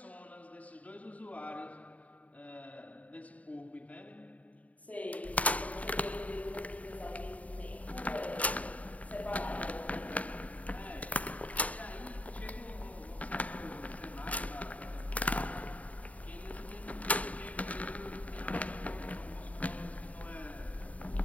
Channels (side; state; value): right; late; 0.069 ms